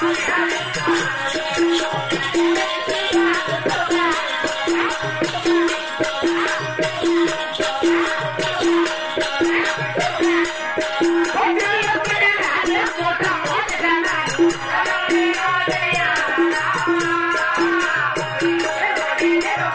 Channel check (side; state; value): both; identical; correlation 1.00